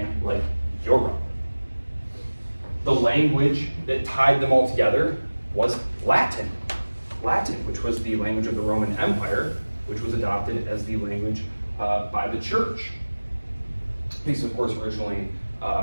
like Europe. The language that tied them all together was Latin, which was the language of the Roman Empire, which was adopted as the language by the church. Because, of course, originally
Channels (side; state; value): both; inverted; correlation -1.00